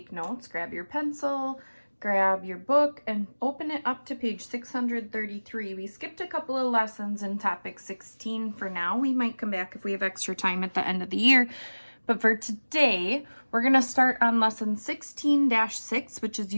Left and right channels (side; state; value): both; inverted; correlation -1.00